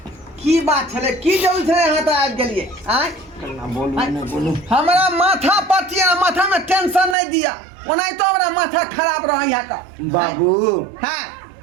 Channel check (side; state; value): left; drops out; at 7.2 s